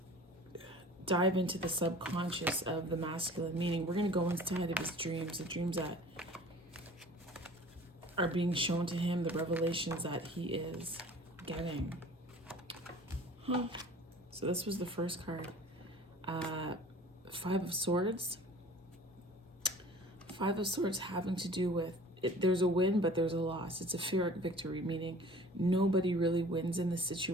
dive into the subconscious of the masculine, meaning we're going to go inside of his dreams, the dreams that are being shown to him, the revelations that he is getting. So this was the first card. Five of Swords. Five of Swords having to do with there's a win, but there's a loss. It's a Pyrrhic victory, meaning nobody really wins in this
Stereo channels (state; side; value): normal; both; correlation 0.45